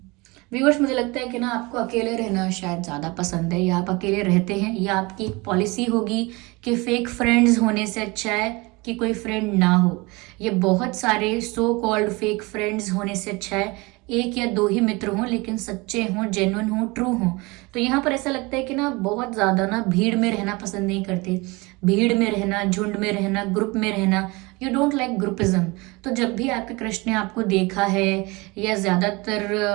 व्यूअर्स, मुझे लगता है कि ना आपको अकेले रहना शायद ज़्यादा पसंद है, या आप अकेले रहते हैं, या आपकी एक पॉलिसी होगी कि फेक फ्रेंड्स होने से अच्छा है कि कोई फ्रेंड ना हो। ये बहुत सारे सो कॉल्ड फेक फ्रेंड्स होने से अच्छा है एक या दो ही मित्र हों, लेकिन सच्चे हों, जेन्युइन हों, ट्रू हों। तो यहाँ पर ऐसा लगता है कि ना बहुत ज़्यादा ना भीड़ में रहना पसंद नहीं करते। भीड़ में रहना, झुंड में रहना, ग्रुप में रहना, यू डोंट लाइक ग्रुपिज्म। तो जब भी आपके क्रश ने आपको देखा है, या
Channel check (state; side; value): quieter; left; 24.9 dB